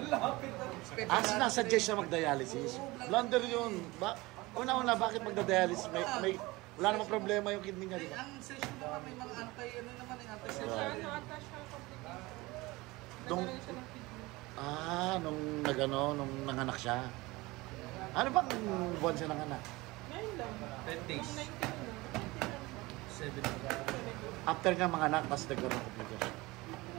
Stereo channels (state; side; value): quieter; left; 21.5 dB